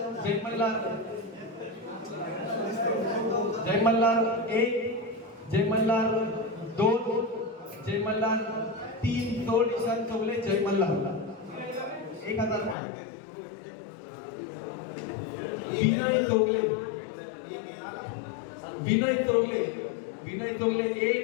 1, Jay Malhar 2, Jay Malhar 3, sold Ishan Chaugle Jay Malhar 1000 point. Vinay Chougale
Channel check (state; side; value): drops out; right; at 12.8 s